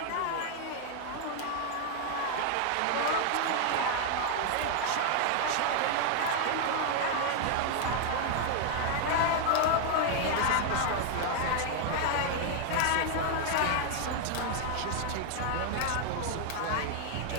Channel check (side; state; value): both; different; correlation 0.00